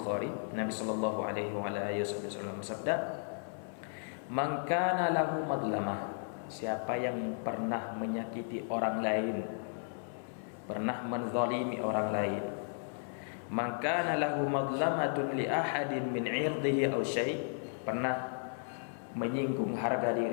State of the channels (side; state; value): right; silent; 55 dB below the other